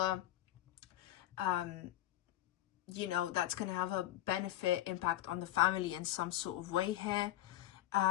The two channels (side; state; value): right; quieter; 14.1 dB